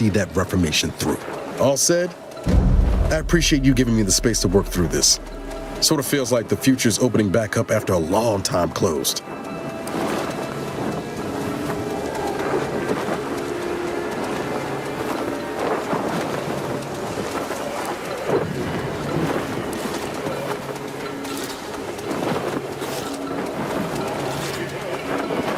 that reformation through. All said, I appreciate you giving me the space to work through this. Sort of feels like the future's opening back up after a long time closed.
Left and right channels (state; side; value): identical; both; correlation 1.00